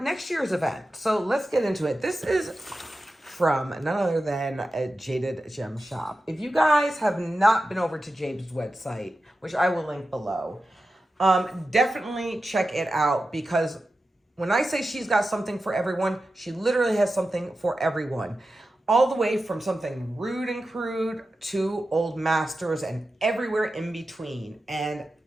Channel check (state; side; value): normal; both; correlation 0.92